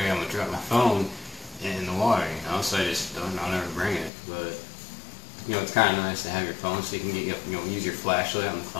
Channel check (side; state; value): right; drops out; at 4.1 s